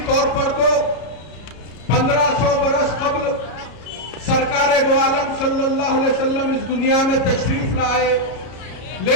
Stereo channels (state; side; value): late; right; 33 ms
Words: طور پر تو 1500 برس قبل سرکار دو عالم صلی اللہ علیہ وسلم اس دنیا میں تشریف لائے،